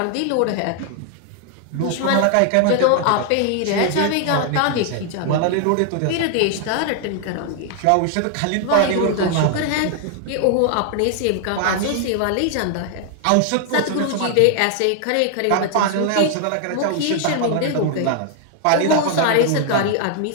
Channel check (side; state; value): both; different; correlation 0.00